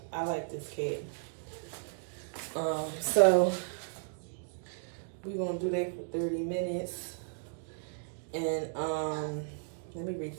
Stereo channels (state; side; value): silent; left; digital silence